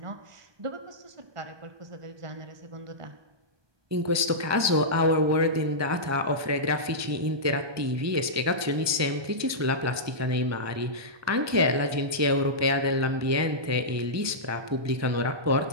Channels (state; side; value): late; left; 1.2 ms